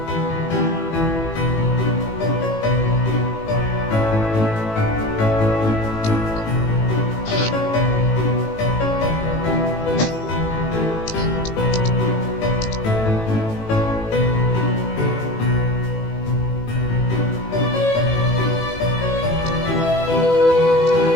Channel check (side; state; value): right; late; 18 ms